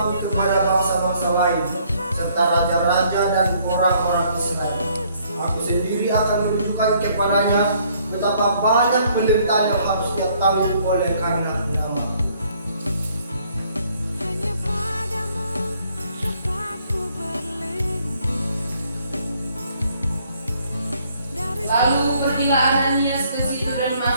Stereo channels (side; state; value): both; inverted; correlation -0.65